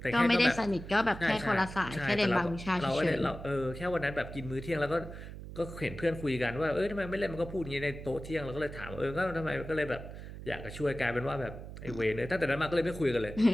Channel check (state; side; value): noise; right; hum, 11 dB below the sound